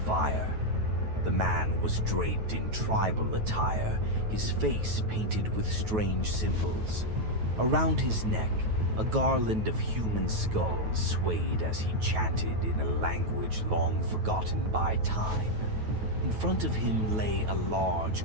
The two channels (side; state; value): left; late; 9.2 ms